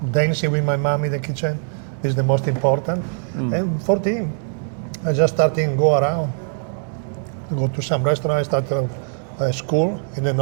Dancing with my mom in the kitchen is the most important. And 14, I just started go around. Go to some restaurant. I started a school in the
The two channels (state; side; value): silent; left; digital silence